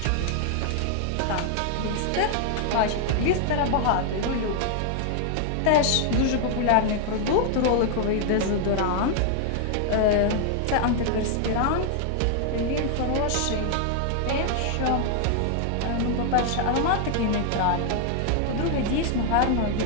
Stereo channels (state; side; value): different; both; correlation 0.00